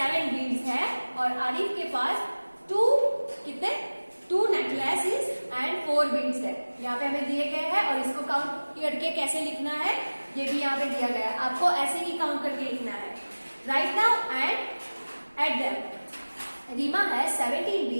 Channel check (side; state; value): both; inverted; correlation -1.00